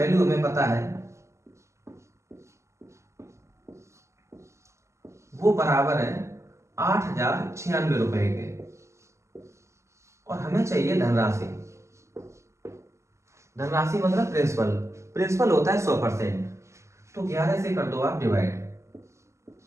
हमें पता है वो बराबर है 8,096 रुपए के, और हमें चाहिए धनराशि। धनराशि मतलब प्रिंसिपल। प्रिंसिपल होता है 100%। तो 11 से कर दो आप डिवाइड,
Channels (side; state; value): left; late; 0.14 ms